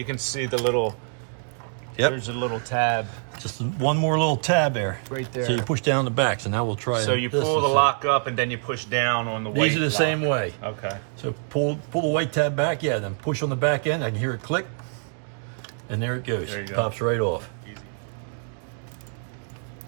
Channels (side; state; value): left; silent; 59 dB below the other